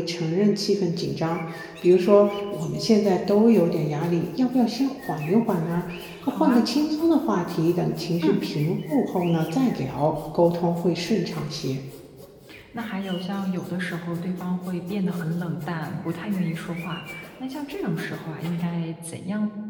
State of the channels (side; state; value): both; identical; correlation 1.00